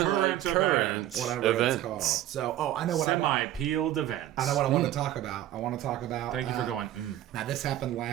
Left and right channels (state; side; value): quieter; left; 13.2 dB